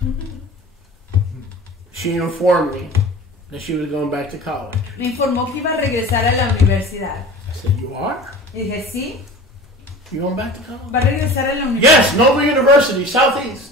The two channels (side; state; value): both; normal; correlation 0.39